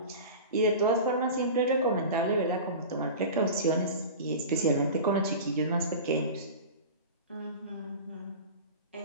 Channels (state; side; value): inverted; both; correlation -0.32